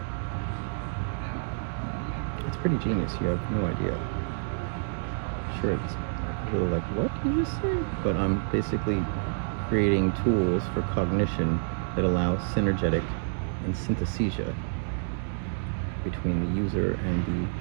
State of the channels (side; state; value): left; silent; digital silence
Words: It's pretty genius. You have no idea. Sure, it's a little like, what did you just say? But I'm basically creating tools for cognition that allow synergetic and synthesia between the user and